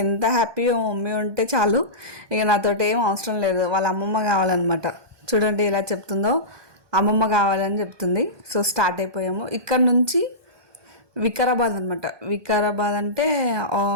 ఎంత హ్యాపీగా మమ్మీ ఉంటే చాలు, ఇక నాతోటి ఏం అవసరం లేదు. వాళ్ళ అమ్మమ్మ కావాలన్నమాట. చూడండి ఎలా చెప్తుందో, అమ్మమ్మ కావాలని చెప్తుంది. సో స్టార్ట్ అయిపోయాము. ఇక్కడ నుంచి వికారాబాద్ అనమాట. వికారాబాద్ అంటే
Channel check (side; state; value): left; late; 1.2 ms